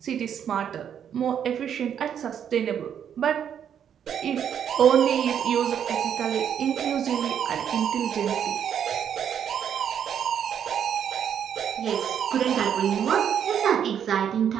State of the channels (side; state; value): left; quieter; 8.7 dB